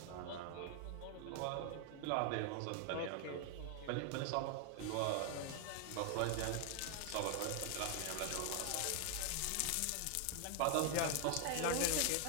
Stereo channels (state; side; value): different; both; correlation 0.00